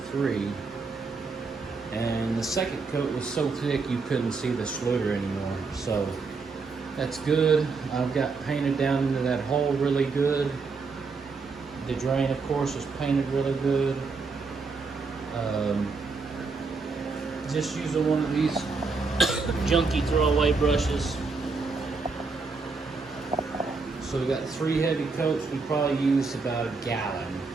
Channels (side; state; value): left; quieter; 4.4 dB